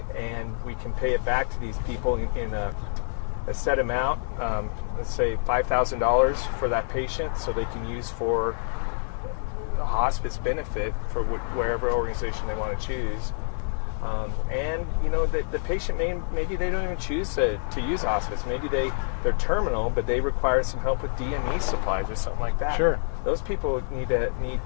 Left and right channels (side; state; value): right; silent; digital silence